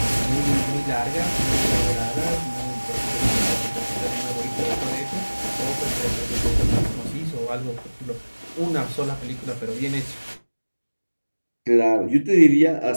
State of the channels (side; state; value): both; inverted; correlation -1.00